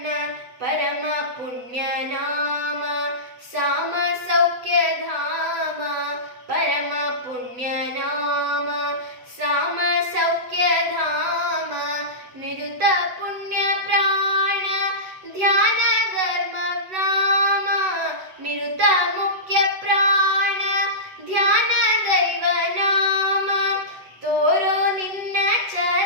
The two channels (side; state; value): left; late; 8.0 ms